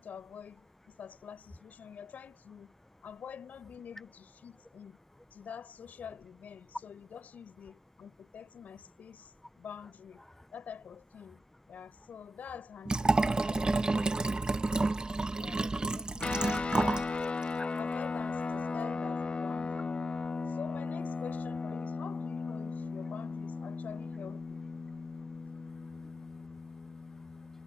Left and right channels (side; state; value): both; normal; correlation 0.88